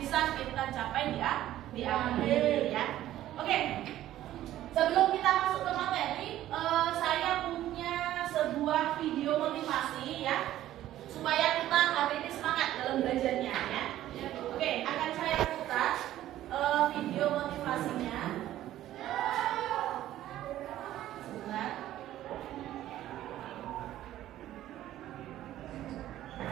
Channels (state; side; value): quieter; left; 13.4 dB